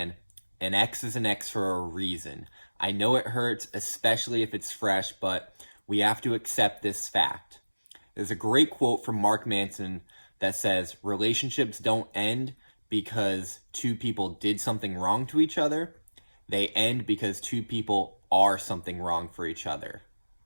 an ex is an ex for a reason. I know it hurts, especially if it's fresh, but we have to accept this fact. There's a great quote from Mark Manson that says, relationships don't end because two people did something wrong to each other. They end because two people are something wrong for each other.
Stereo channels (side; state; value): both; inverted; correlation -1.00